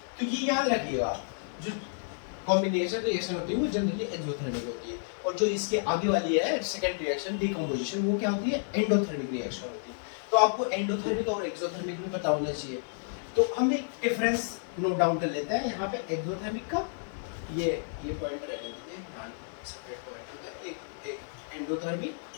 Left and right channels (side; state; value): right; silent; digital silence